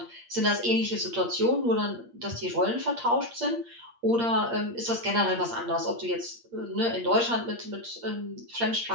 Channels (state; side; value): late; left; 8.6 ms